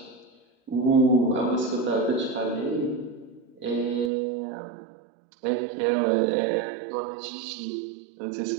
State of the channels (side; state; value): left; drops out; at 4.1 s